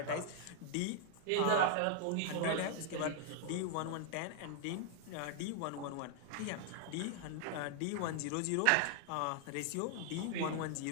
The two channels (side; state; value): both; different; correlation 0.00